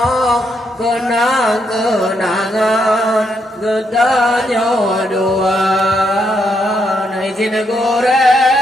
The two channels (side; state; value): both; normal; correlation 0.77